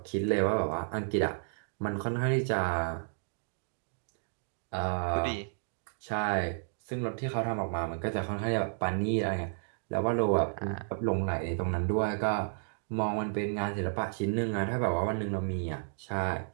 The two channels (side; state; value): left; silent; digital silence